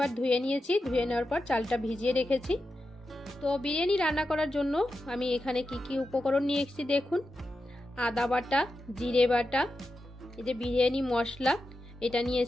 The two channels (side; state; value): both; normal; correlation 0.90